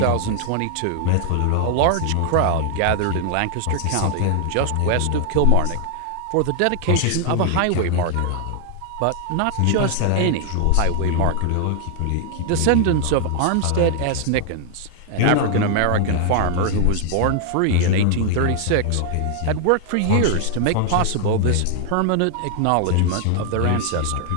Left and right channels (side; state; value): both; different; correlation 0.00